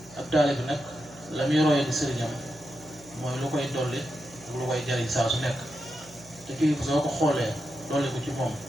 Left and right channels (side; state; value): right; noise; hum, 23 dB below the sound